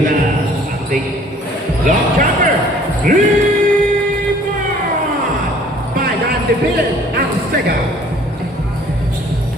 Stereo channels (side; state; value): both; normal; correlation 0.55